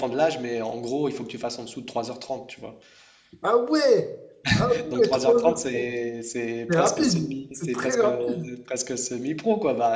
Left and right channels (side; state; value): both; identical; correlation 1.00